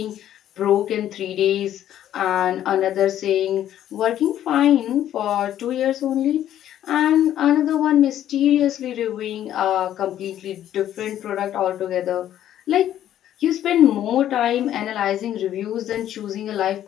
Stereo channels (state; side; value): quieter; right; 11.5 dB